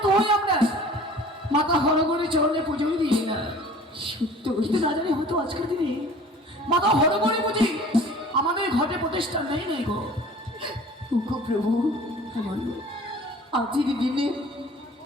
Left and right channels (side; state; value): both; normal; correlation 0.47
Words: আমরা মাথা হরগড়ে চরণে পুজোই দিই না, সত্য কিন্তু না জানি হয়তো আজকের দিনে মাথা হরগড়ে বুঝি আমাদের ঘটে প্রতিষ্ঠা নেই গো। গো প্রভু, আজকের দিনে